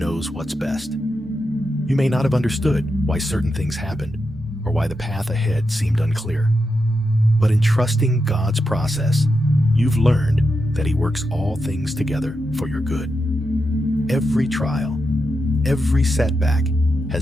what's best. You may not have understood why certain things happened or why the path ahead seemed unclear. But in trusting God's process, you've learned that He works all things together for your good. Every trial, every setback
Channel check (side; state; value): both; normal; correlation 0.87